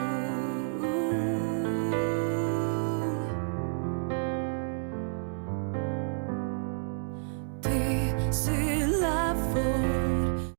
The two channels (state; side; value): silent; left; digital silence